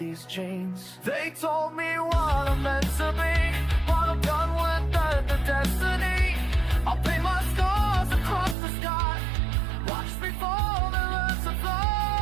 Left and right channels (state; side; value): drops out; left; at 8.6 s